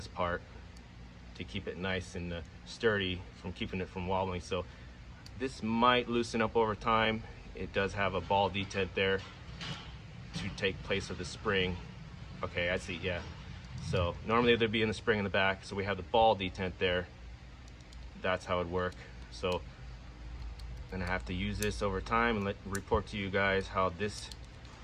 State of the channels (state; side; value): identical; both; correlation 1.00